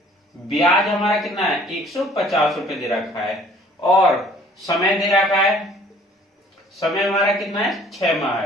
ब्याज हमारा कितना है 150 रुपए दे रखा है, और समय दे रखा है, समय हमारा कितना है 6 माह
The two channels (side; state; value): both; normal; correlation 0.55